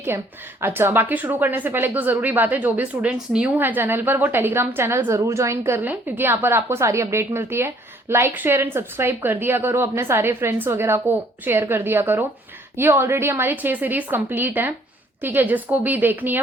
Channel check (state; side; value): normal; both; correlation 0.61